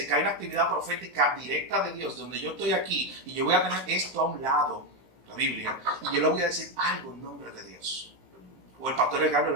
que hay una actividad profética directa de Dios, donde yo estoy aquí y yo voy a tener esto a un lado, la Biblia, y yo le voy a decir algo en nombre de Dios. O el pastor Carlos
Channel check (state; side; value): late; left; 15 ms